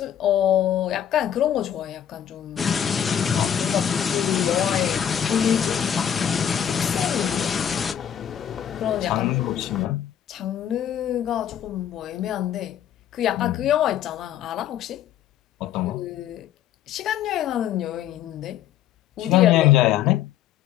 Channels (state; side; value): quieter; right; 9.9 dB